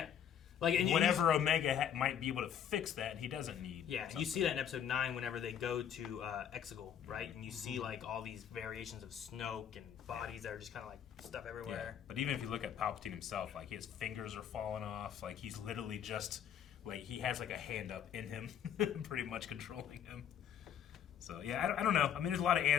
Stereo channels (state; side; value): quieter; right; 9.0 dB